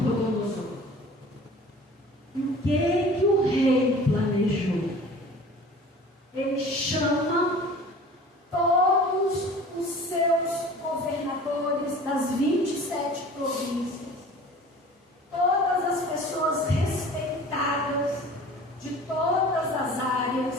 E o que o rei planejou? Ele chama todos os seus governadores das 27 províncias, todas as pessoas respeitadas de todas as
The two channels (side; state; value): both; normal; correlation 0.44